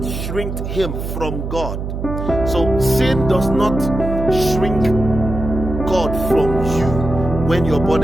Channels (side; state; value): right; noise; hum, 5 dB below the sound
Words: shrinked him from God. So sin does not shrink God from you when you're born